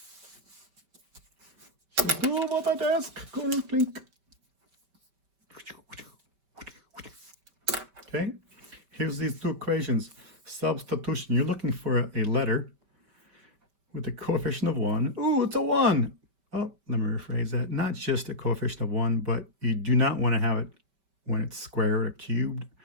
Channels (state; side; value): late; left; 5.1 ms